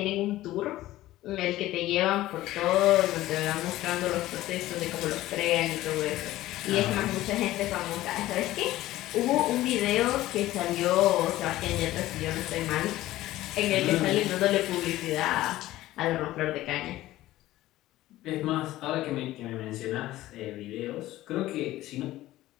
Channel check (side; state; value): right; quieter; 15.8 dB